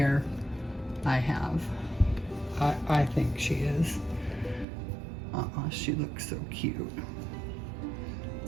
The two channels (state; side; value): drops out; left; at 4.7 s